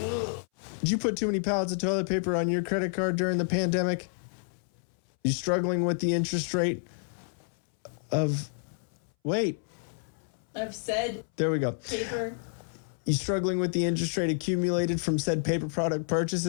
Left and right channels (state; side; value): silent; right; 58 dB below the other